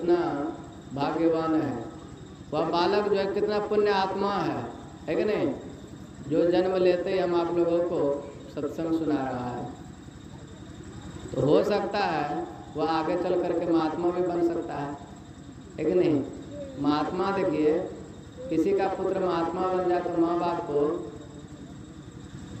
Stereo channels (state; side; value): identical; both; correlation 1.00